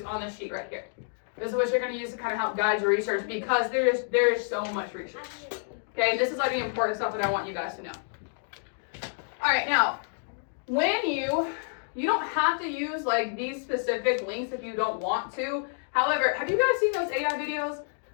on this sheet right here. This is what you're going to use to kind of help guide your research, because there is so much research. Okay, this is like the important stuff that I want you guys to know. All right, now, when you don't have to use like these specific links if you don't want to. However, have you guys seen those AI videos?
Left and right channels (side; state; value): right; silent; digital silence